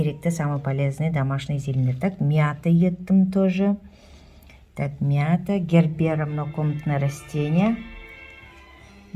самые полезные домашний зелень. Так, мята еттім тоже. Так, мята, гербера, многокомнатное растение.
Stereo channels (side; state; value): both; identical; correlation 1.00